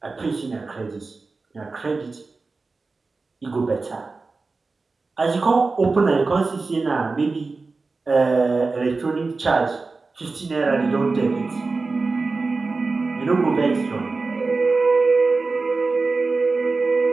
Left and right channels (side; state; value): left; quieter; 3.9 dB